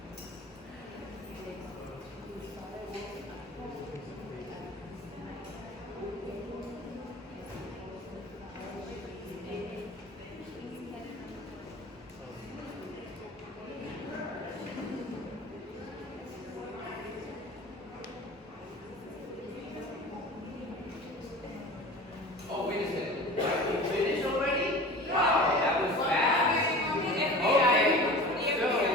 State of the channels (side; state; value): both; normal; correlation 0.38